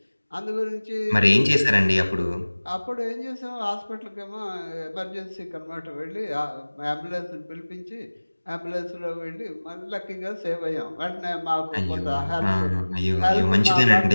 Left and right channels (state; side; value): inverted; both; correlation -1.00